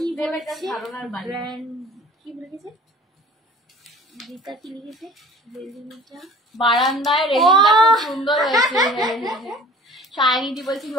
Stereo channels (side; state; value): both; normal; correlation 0.45